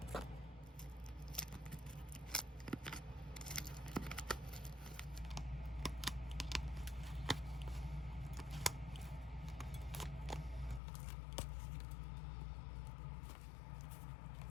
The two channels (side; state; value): right; drops out; at 10.8 s